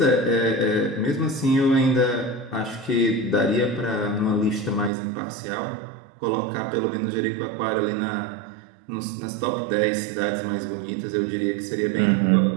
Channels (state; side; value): drops out; left; at 4.9 s